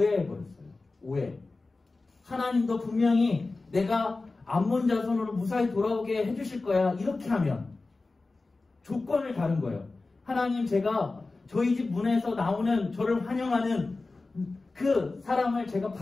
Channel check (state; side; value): quieter; right; 3.5 dB